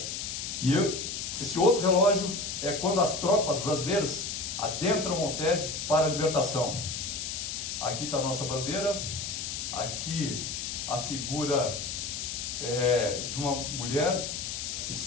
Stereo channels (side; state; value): left; noise; hiss, 4 dB below the sound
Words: E esse outro relógio é quando as tropas brasileiras adentram Montese para a libertação. Aqui está a nossa bandeira, aqui a figura de uma mulher que